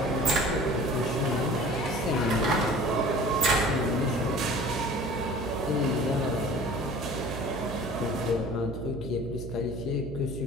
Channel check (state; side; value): noise; right; hum, 9 dB below the sound